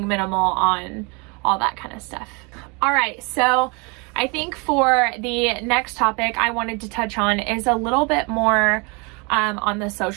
minimal on all that kind of stuff. All right, so I think for the next topic I wanted to touch on is a little bit more on the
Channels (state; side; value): quieter; left; 30.8 dB